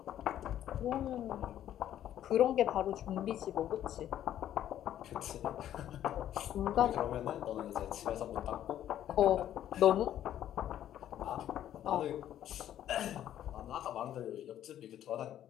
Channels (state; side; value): quieter; right; 11.4 dB